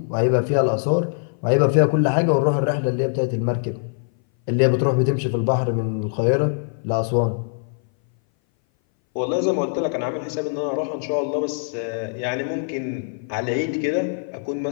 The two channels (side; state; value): right; silent; 59 dB below the other